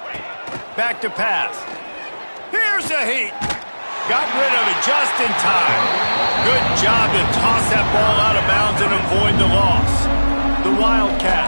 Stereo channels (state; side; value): inverted; both; correlation -1.00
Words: Back to pass. Here's a heat. Got rid of it just in time. Good job to toss that ball out of bounds and avoid the loss. The